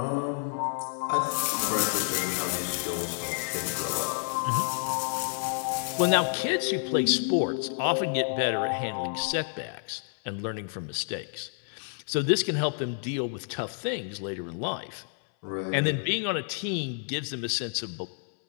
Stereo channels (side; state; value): right; silent; 57 dB below the other